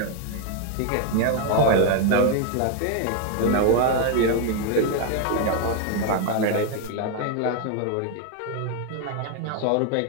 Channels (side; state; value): both; different; correlation 0.01